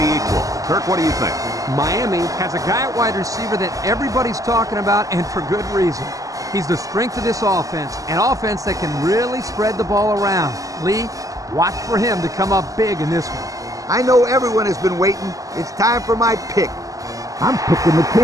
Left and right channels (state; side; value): late; left; 0.17 ms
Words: equal. Kirk, what do you think? Miami has a guy at wide receiver that everybody's talking about, and for good reason. He's the strength of this offense, an offense that can really spread the ball around. Lee, watch for him to come up big in this one. I know everyone has been waiting. It's time for my pick. I'm picking the